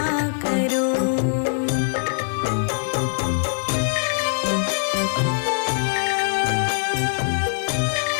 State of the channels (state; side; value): silent; right; 64 dB below the other